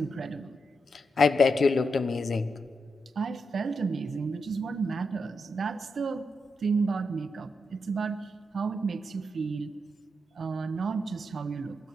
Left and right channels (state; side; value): normal; both; correlation 0.84